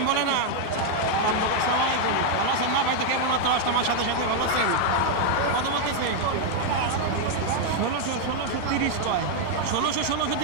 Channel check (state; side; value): different; both; correlation 0.00